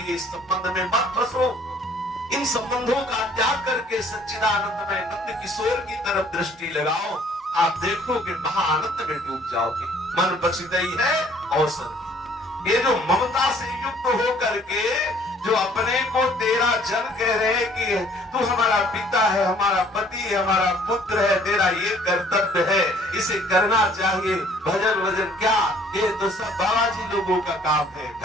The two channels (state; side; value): normal; both; correlation 0.58